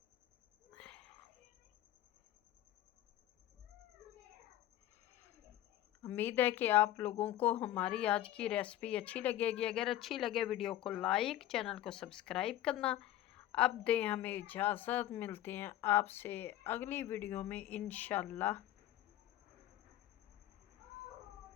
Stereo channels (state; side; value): quieter; right; 13.4 dB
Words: उम्मीद है कि आप लोगों को हमारी आज की रेसिपी अच्छी लगेगी। अगर अच्छी लगे वीडियो को लाइक, चैनल को सब्सक्राइब करना। अब दें हमें इजाज़त, मिलते हैं आपसे अगली वीडियो में इंशाल्लाह।